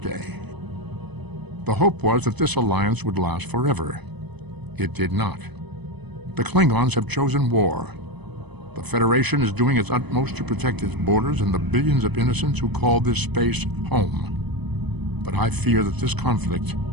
The hope was that this alliance would last forever. It did not. The Klingons have chosen war. The Federation is doing its utmost to protect its borders and the billions of innocents who call this space home. But I fear that this conflict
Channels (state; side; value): late; left; 0.99 ms